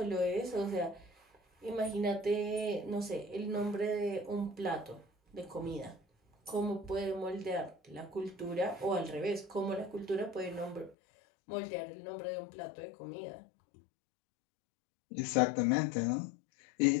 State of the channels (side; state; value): right; drops out; at 11.0 s